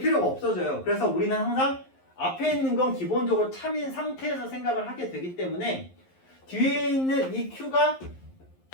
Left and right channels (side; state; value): right; late; 11 ms